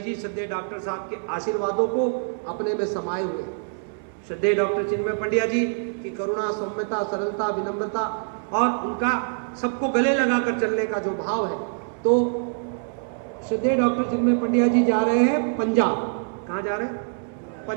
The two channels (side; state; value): left; silent; 62 dB below the other